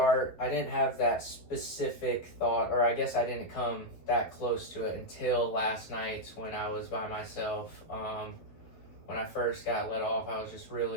I didn't have that specific thought, or I guess I didn't come that close to it until last night when I was by myself. When I first got let off, I was just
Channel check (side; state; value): right; late; 12 ms